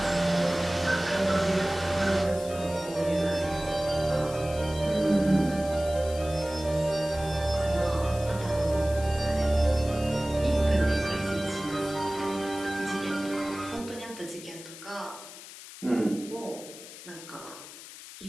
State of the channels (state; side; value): noise; left; hiss, 15 dB below the sound